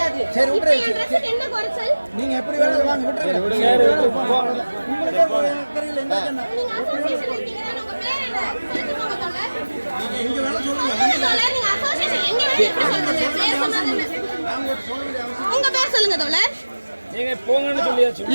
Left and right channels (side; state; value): both; inverted; correlation -1.00